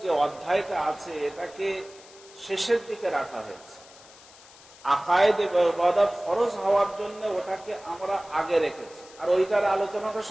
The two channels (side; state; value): left; noise; hiss, 22 dB below the sound